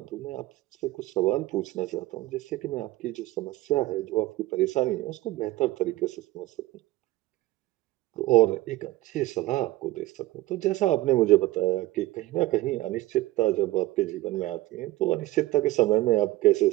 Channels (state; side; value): quieter; left; 17.6 dB